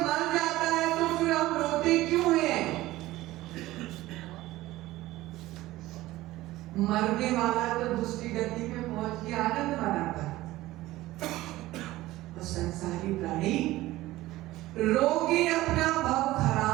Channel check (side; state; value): left; quieter; 17.1 dB